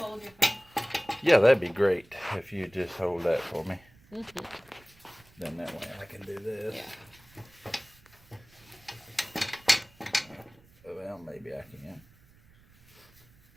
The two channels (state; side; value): noise; right; rumble, 28 dB below the sound